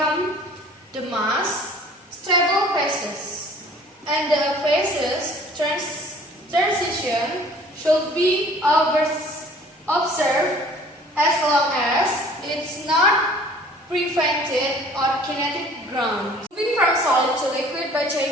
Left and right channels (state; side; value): normal; both; correlation 0.51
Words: the mass stable phases, and the phases equation should be observed as long as it's not prevented on kinetic ground. Moving from solid to liquid by